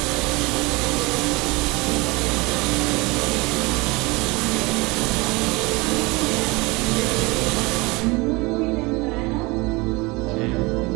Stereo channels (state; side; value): quieter; left; 24.7 dB